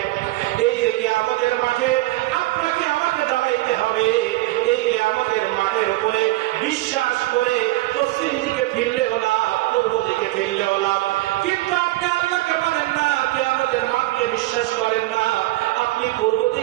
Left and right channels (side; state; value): left; quieter; 18.5 dB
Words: এই যে কিয়ামতের মাঠে আপনাকে আমাকে দাঁড়াইতে হবে, এই কিয়ামতের মাঠের উপরে বিশ্বাস করে পশ্চিম দিকে ফিরলেও লাভ, পূর্ব দিকে ফিরলেও লাভ। কিন্তু আপনি আল্লাহকে মানেন না, কিয়ামতের মাঠকে বিশ্বাস করেন না, আপনি পূর্ব